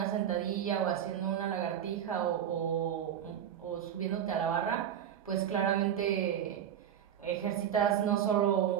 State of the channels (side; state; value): left; quieter; 9.6 dB